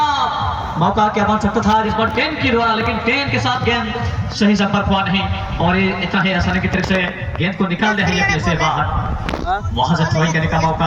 मौका क्या बन सकता था इस बार 10 की द्वारा, लेकिन 10 के साथ गेंद सही संपर्क हुआ नहीं और ये इतना ही आसानी की तरफ से गेंद को निकाल दिया है से बाहर। वहां से थ्रोइंग करने का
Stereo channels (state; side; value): identical; both; correlation 1.00